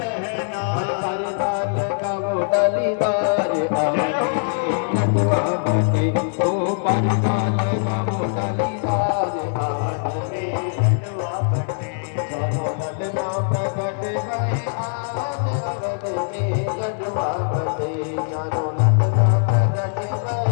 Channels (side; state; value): right; silent; digital silence